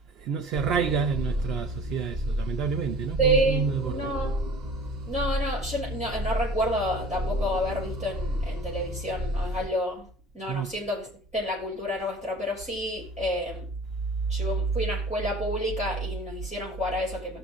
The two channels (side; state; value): both; normal; correlation 0.45